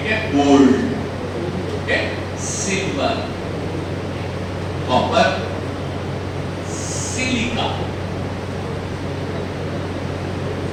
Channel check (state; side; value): identical; both; correlation 1.00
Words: है, गोल्ड, ठीक है, silver, copper, silica.